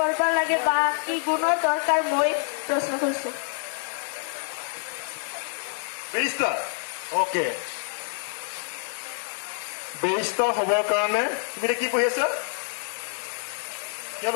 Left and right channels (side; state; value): right; silent; 57 dB below the other